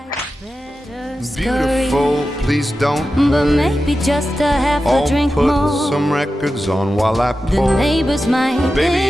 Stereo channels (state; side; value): normal; both; correlation 0.92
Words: better scurry. Beautiful, please don't But hurry. maybe just a half a I'll drink put more. some records on while I The pour. neighbors might Baby,